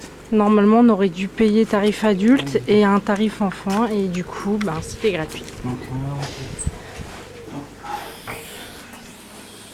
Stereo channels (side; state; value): both; identical; correlation 1.00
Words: Normalement, on aurait dû payer tarif adulte et un tarif enfant. Et du coup, ben, c'était gratuit. Donc,